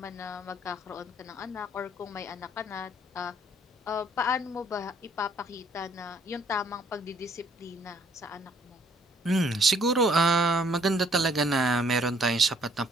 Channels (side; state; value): both; normal; correlation 0.63